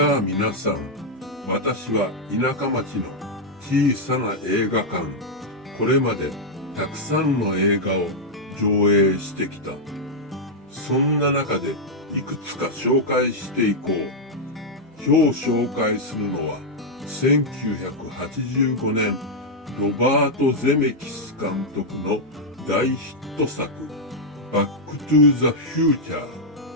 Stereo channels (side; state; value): both; normal; correlation -0.03